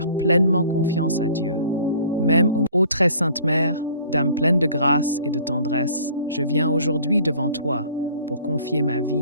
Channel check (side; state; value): both; inverted; correlation -0.52